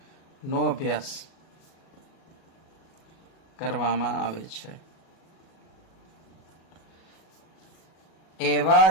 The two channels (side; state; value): right; late; 37 ms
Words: નો અભ્યાસ કરવામાં આવે છે એવા